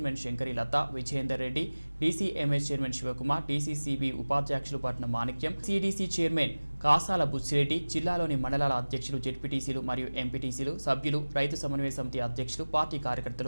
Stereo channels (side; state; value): both; inverted; correlation -1.00